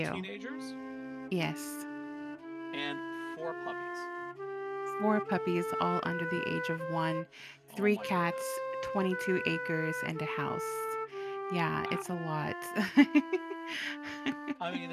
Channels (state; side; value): identical; both; correlation 1.00